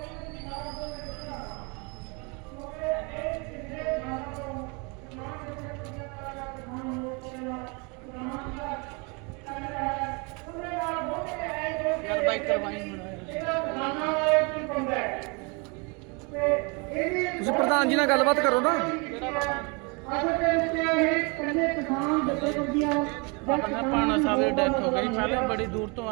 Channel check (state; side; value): quieter; left; 31.3 dB